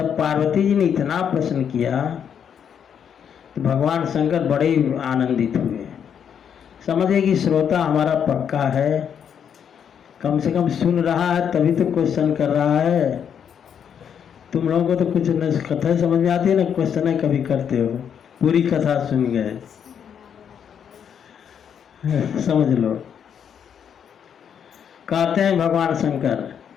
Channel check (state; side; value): quieter; right; 8.1 dB